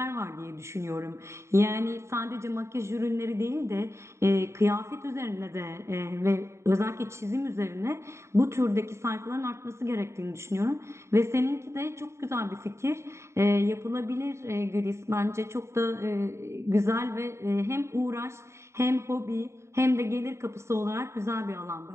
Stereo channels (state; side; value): late; left; 0.13 ms